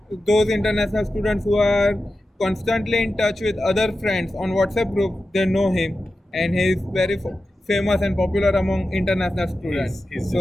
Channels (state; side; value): normal; both; correlation 0.92